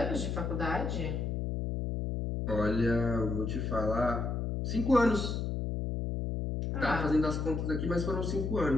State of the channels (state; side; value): noise; left; hum, 1 dB below the sound